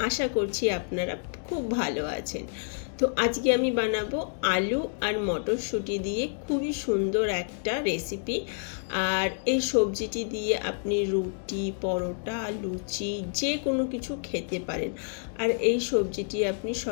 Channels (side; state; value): right; silent; digital silence